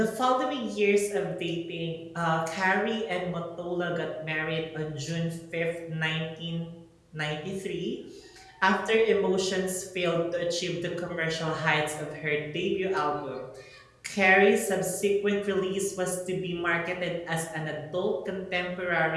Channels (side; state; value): both; identical; correlation 1.00